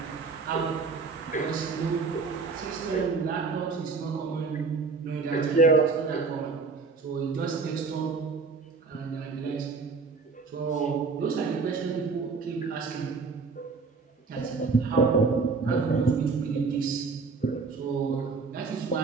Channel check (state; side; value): quieter; left; 4.5 dB